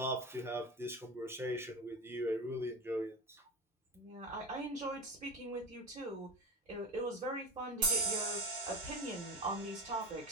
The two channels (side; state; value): both; normal; correlation 0.26